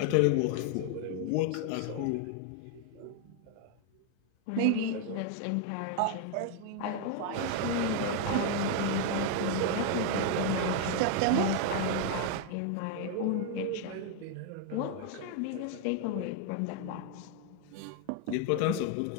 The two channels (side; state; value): both; different; correlation 0.00